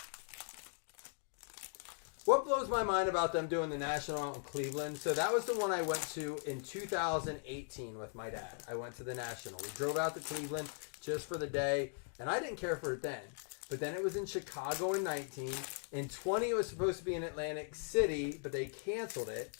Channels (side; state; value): right; silent; 52 dB below the other